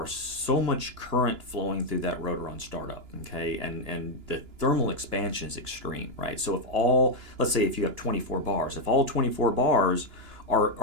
so much current flowing through that rotor on startup, okay, and the thermal expansion is extreme, right? So let's say if you have 24 bars, if all 24 bars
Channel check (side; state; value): left; late; 2.9 ms